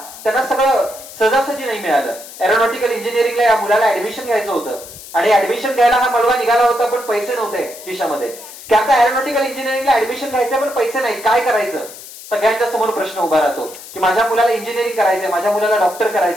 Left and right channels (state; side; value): noise; left; hiss, 15 dB below the sound